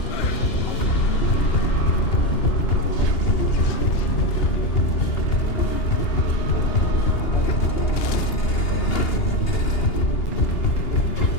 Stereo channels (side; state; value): right; late; 2.8 ms